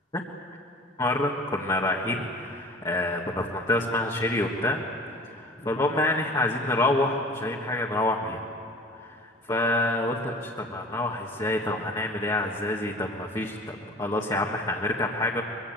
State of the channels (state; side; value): normal; both; correlation 0.43